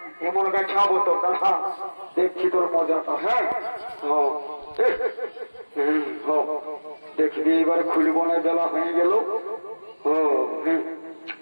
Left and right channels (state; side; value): inverted; both; correlation -1.00